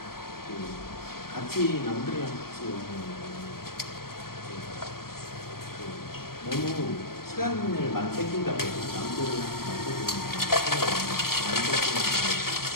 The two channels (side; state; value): right; late; 0.93 ms